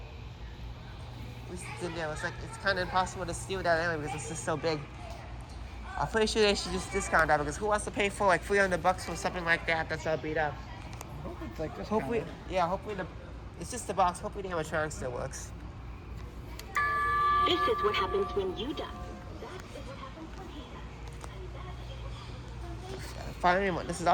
At least it's in there. It's like it's kind of impossible to steal that anyway because it's just so big. I'm pretty sure they should just discount that because who wants to pay for like $300 for something like that that's all beat up? I hope it's like this. Hopefully, yeah. Hopefully it's just the box. Hopefully the animatronic still works. This is what happens when you die. That is what happens from here. Finally, this is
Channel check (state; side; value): identical; both; correlation 1.00